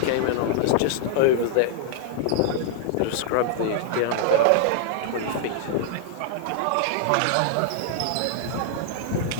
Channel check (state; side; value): different; both; correlation -0.01